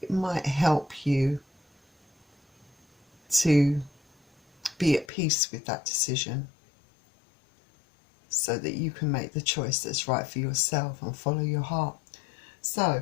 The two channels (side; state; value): right; drops out; at 5.1 s